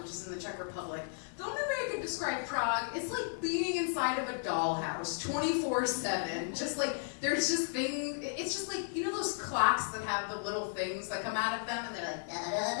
which is in the Czech Republic. The only way I could describe Prague is like being inside of a dollhouse 24/7. Just like, there's just things, it's just like, those clocks that have the little things that come out of them, and they're like,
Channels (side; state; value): right; silent; digital silence